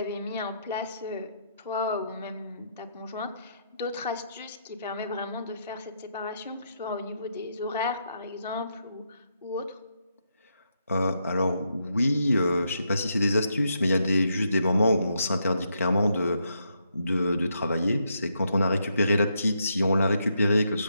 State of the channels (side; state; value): both; inverted; correlation -0.79